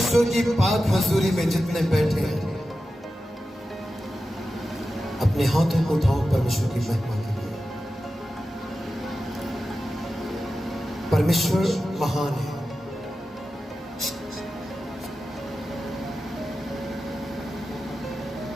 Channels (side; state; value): both; normal; correlation 0.93